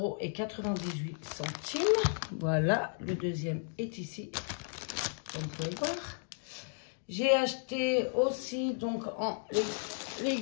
€. Voilà, le deuxième est ici, comme vous pouvez le voir. J'ai acheté aussi, donc, en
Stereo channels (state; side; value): silent; right; digital silence